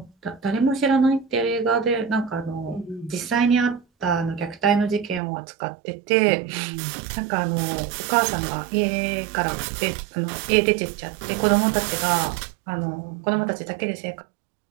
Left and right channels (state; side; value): drops out; left; at 5.2 s